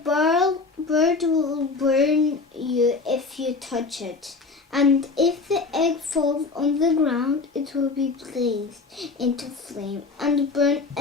bird will burn you if you touch it. And if the egg falls on the ground, it will be blazed into flame and burn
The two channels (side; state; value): right; quieter; 4.1 dB